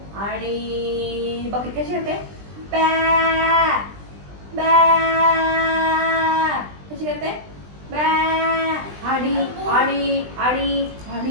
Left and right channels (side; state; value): left; late; 20 ms